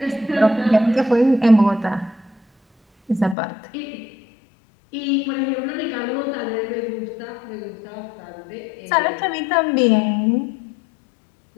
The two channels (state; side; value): drops out; right; at 3.4 s